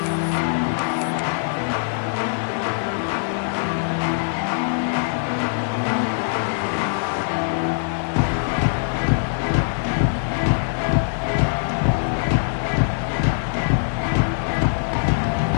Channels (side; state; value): right; silent; digital silence